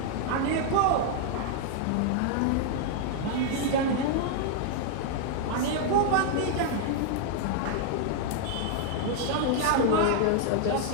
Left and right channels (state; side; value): different; both; correlation -0.01